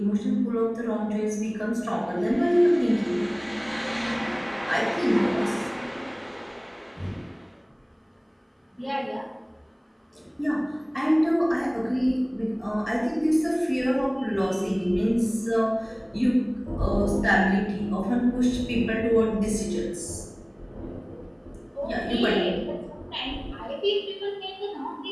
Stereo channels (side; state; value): both; identical; correlation 1.00